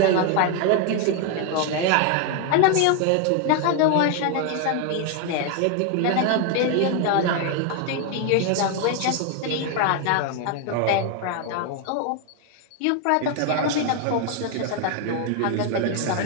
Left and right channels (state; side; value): different; both; correlation 0.01